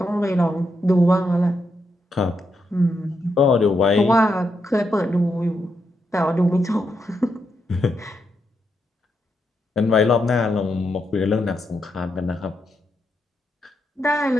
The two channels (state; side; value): normal; both; correlation 0.82